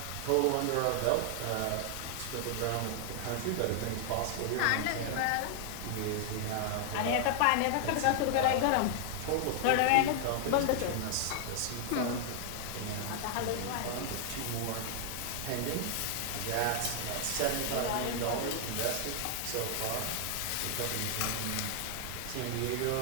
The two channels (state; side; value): different; both; correlation 0.00